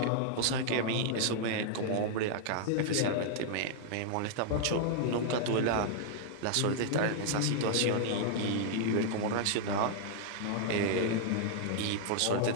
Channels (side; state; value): both; different; correlation -0.01